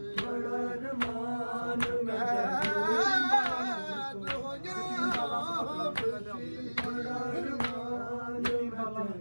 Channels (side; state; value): both; inverted; correlation -1.00